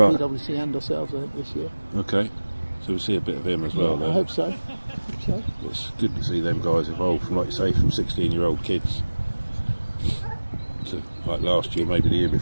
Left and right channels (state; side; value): inverted; both; correlation -1.00